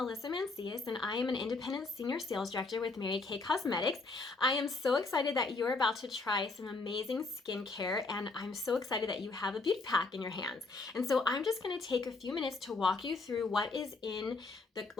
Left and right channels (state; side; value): quieter; right; 3.7 dB